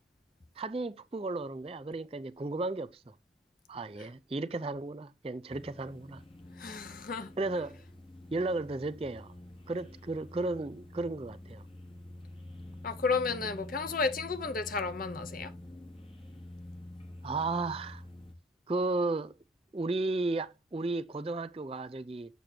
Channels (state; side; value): normal; both; correlation 0.50